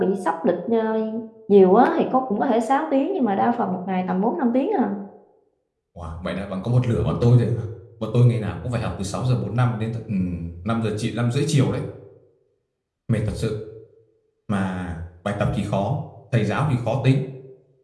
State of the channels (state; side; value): identical; both; correlation 1.00